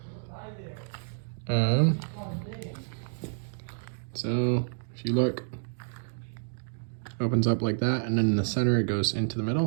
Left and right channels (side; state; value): left; silent; digital silence